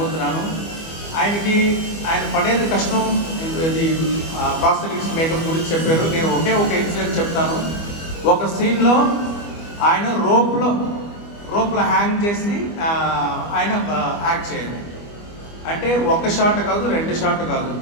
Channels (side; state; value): right; late; 25 ms